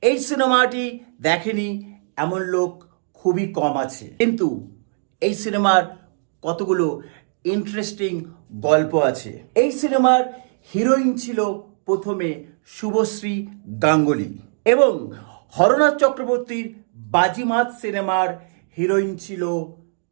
এই সিনেমাটি দেখেনি এমন লোক খুবই কম আছে, কিন্তু এই সিনেমার কতগুলো ইন্টারেস্টিং গল্প আছে। এই সিনেমার হিরোইন ছিল প্রথমে শুভশ্রী গাঙ্গুলি এবং হরনাথ চক্রবর্তীর বাজিমাত সিনেমার হিরোইন ছিল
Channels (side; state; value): left; silent; digital silence